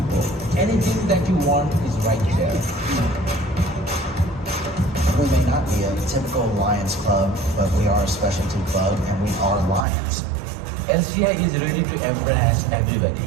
Anything that you want is right there. We may not be a typical Lions club, but we are a specialty club and we are Lions. LCI is ready to embrace everybody.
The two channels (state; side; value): drops out; left; at 9.9 s